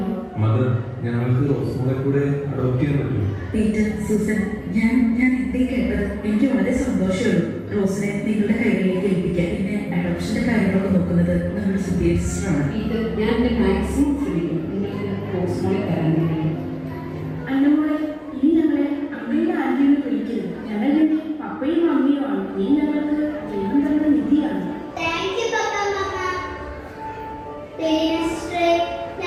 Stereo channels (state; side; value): identical; both; correlation 1.00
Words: മദർ, ഞങ്ങൾക്ക് റോസ്മോളെ കൂടെ അഡോപ്റ്റ് ചെയ്യാൻ പറ്റുമോ? പീറ്റർ, സൂസൻ, ഞാൻ എന്തേ കേട്ടത്? എനിക്ക് വളരെ സന്തോഷമുള്ളൂ. റോസിനെ നിങ്ങളുടെ കൈകളിലേക്ക് ഏൽപ്പിക്കാൻ. പിന്നെ അഡോപ്ഷന്റെ കാര്യങ്ങളൊക്കെ നോക്കുന്നത് നമ്മുടെ സുധീർ സിസ്റ്ററാണ്. ഇത് ഞാൻ എൻ്റെ മാക്സിമം ശ്രമിക്കും നിങ്ങൾക്ക് റോസ്മോളെ തരാൻ വേണ്ടി. അന്നമോളെ, ഇനി ഞങ്ങളെ അമ്മയുടെ ആന്റിയെ വിളിക്കരുത്. ഞങ്ങളുടെ പപ്പയും അമ്മയും ആണ്. നീ ഞങ്ങൾക്ക് ദൈവം തന്ന നിധിയാണ്. താങ്ക് യു പപ്പ, മമ്മ. സിസ്റ്ററെ,